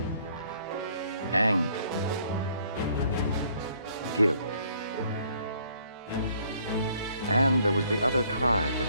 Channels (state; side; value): inverted; both; correlation -0.63